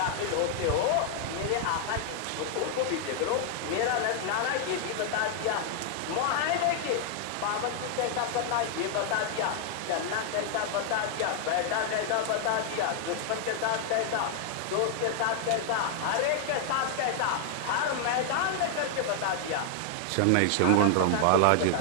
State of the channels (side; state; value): both; different; correlation 0.00